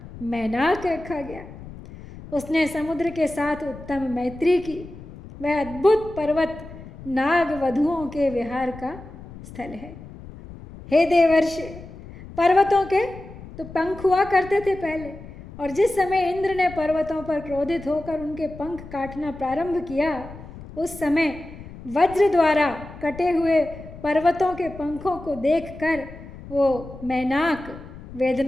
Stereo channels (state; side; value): noise; left; rumble, 15 dB below the sound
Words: मैनाक रखा गया। उसने समुद्र के साथ उत्तम मैत्री की। वह अद्भुत पर्वत नाग वधुओं के विहार का स्थल है। हे देवर्षि, पर्वतों के तो पंख हुआ करते थे पहले, और जिस समय इंद्र ने पर्वतों पर क्रोधित होकर उनके पंख काटना प्रारंभ किया, उस समय वज्र द्वारा कटे हुए पर्वतों के पंखों को देखकर वो मैनाक